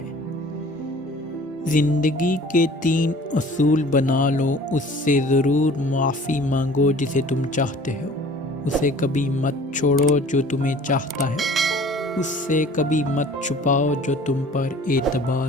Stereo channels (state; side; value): normal; both; correlation 0.48